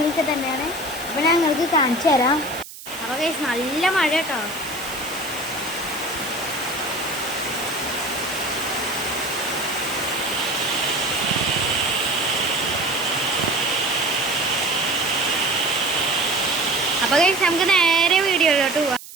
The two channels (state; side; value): noise; right; hiss, 15 dB below the sound